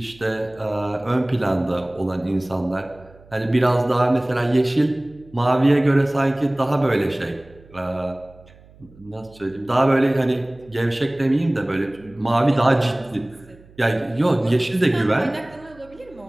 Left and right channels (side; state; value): right; noise; hum, 25 dB below the sound